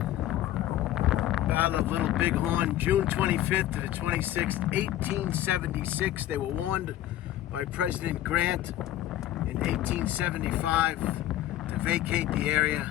Battle of Little Bighorn, June 25th to the 26th, 1876. They were warned by President Grant in 1875 to vacate the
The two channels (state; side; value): quieter; right; 13.4 dB